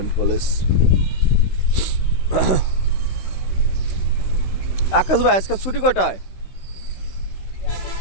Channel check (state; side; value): late; right; 16 ms